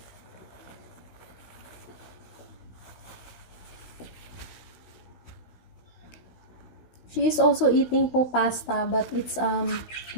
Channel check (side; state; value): right; late; 16 ms